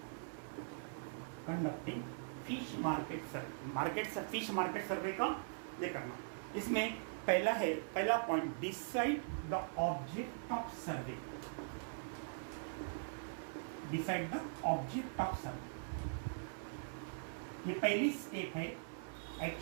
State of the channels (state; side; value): silent; left; 50 dB below the other